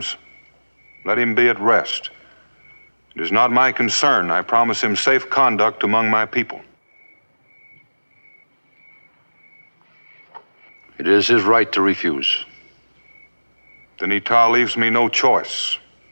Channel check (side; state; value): both; inverted; correlation -1.00